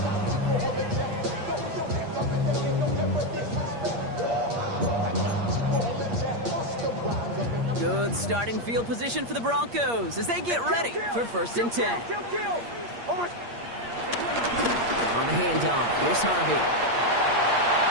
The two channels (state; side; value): late; left; 8.5 ms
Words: Good starting field position for the Broncos as they get ready for 1st and 10. On the handoff, here's Harvey.